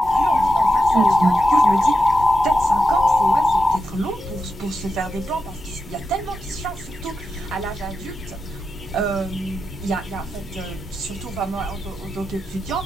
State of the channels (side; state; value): both; normal; correlation 0.89